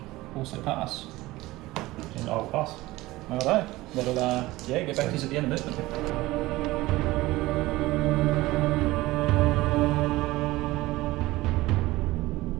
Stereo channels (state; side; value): quieter; left; 18.8 dB